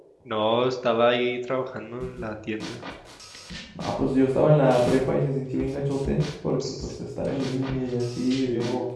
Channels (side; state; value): both; identical; correlation 1.00